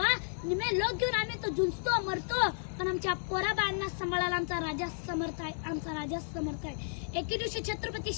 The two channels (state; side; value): silent; right; digital silence